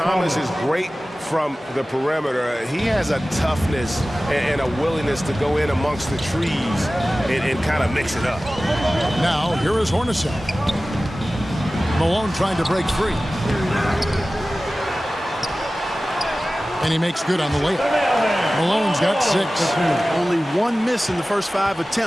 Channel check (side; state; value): both; normal; correlation 0.96